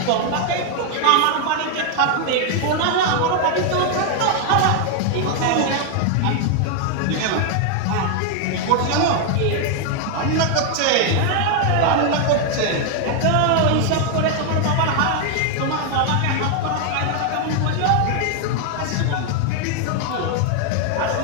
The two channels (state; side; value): different; both; correlation 0.00